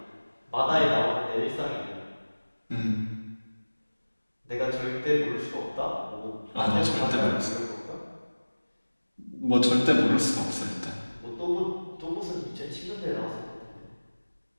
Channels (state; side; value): inverted; both; correlation -1.00